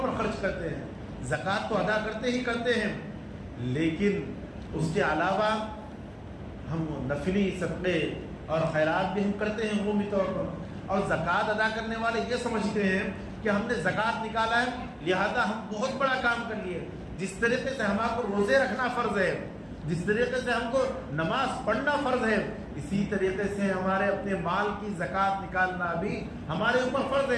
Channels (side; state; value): both; identical; correlation 1.00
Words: پر خرچ کرتے ہیں. زکوٰۃ تو ادا کرتے ہی کرتے ہیں، لیکن اس کے علاوہ ہم نفلی صدقے اور خیرات بھی ہم کرتے ہیں عمومی طور پر. اور زکوٰۃ ادا کرنے والے یہ سمجھتے ہیں کہ ہم نے زکوٰۃ نکالا ہے لہذا ہم بہت بڑا کام کر لیے. جس طریقے سے ہمارے کو روزے رکھنا فرض ہے، جس طریقے سے ہم کو نماز پڑھنا فرض ہے، اسی طریقے سے ہمارے اپنے مال کی زکوٰۃ نکالنا بھی ہمارے اوپر فرض